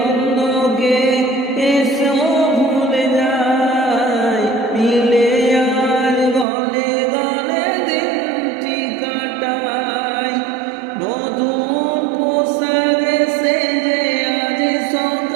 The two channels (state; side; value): drops out; left; at 6.5 s